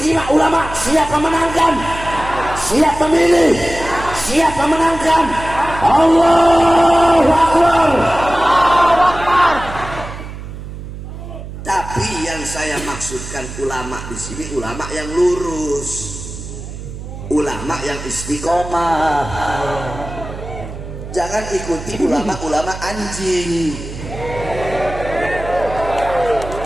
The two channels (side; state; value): right; noise; hum, 11 dB below the sound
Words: ulama? Siap memenangkan? Siap memilih? Siap memenangkan? Allahu Akbar. Tapi yang saya maksudkan ulama di sini ulama yang lurus, ulama yang istiqomah. Jangan ikuti ulama-ulama anjing.